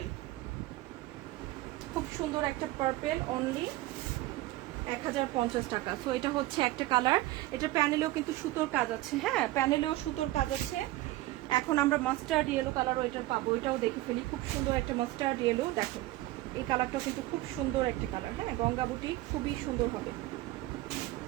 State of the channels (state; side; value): quieter; left; 17.6 dB